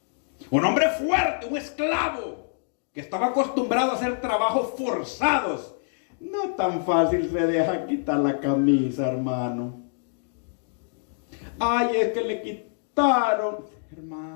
un hombre fuerte, un esclavo que estaba acostumbrado a hacer trabajos forzados. No tan fácil se deja quitar la camisa, hermano. Ay, es que le quitaron.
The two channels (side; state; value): right; silent; digital silence